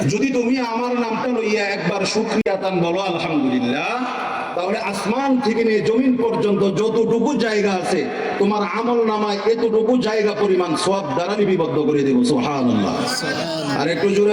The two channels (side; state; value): both; identical; correlation 1.00